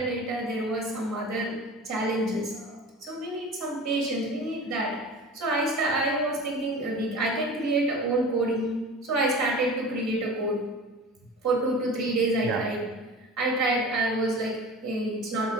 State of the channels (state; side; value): normal; both; correlation 0.36